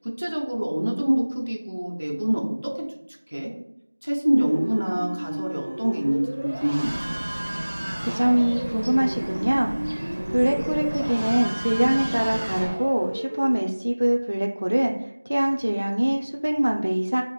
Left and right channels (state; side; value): inverted; both; correlation -1.00